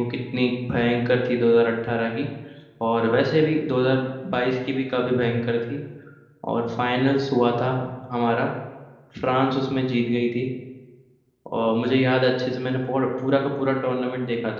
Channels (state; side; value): identical; both; correlation 1.00